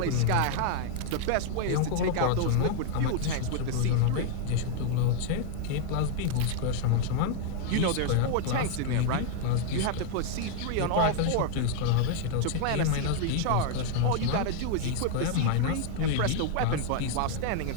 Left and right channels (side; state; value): both; different; correlation 0.00